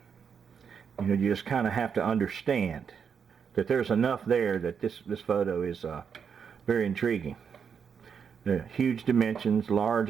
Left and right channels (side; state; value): left; quieter; 6.8 dB